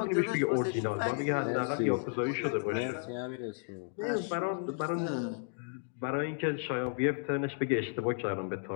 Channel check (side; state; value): right; silent; digital silence